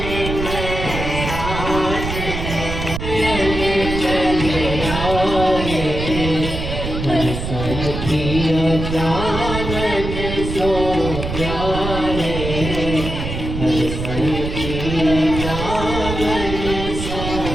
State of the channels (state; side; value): noise; right; rumble, 5 dB below the sound